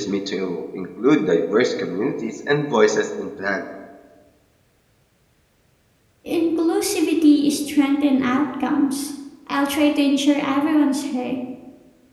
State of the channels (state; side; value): identical; both; correlation 1.00